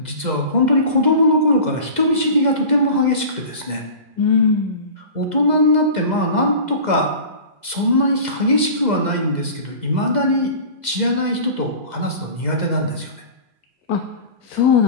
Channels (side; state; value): left; late; 2.0 ms